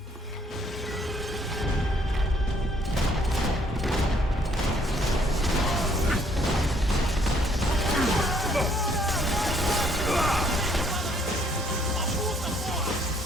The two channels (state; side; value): normal; both; correlation 0.65